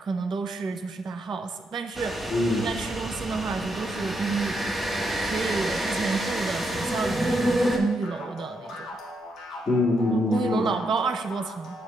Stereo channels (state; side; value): normal; both; correlation 0.79